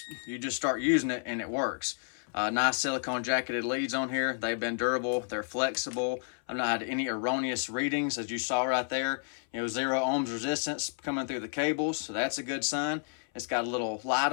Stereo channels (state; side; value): silent; right; 56 dB below the other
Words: start using it, and it works. Nice silicone jacketed leads on here. They've been durable. They're flexible. I've not had any erroneous readings, as you saw right there. 0 ohms resistance coming through the cables, so that's a good sign. It's got a little light